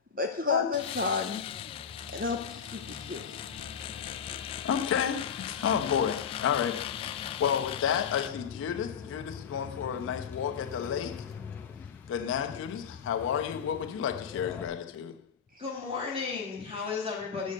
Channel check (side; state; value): right; quieter; 7.3 dB